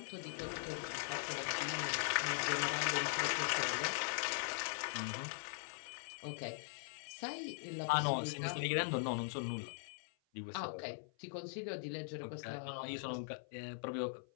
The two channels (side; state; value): right; silent; 50 dB below the other